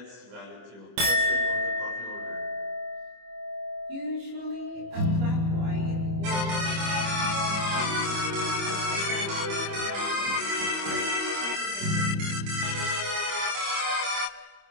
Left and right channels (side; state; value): left; late; 25 ms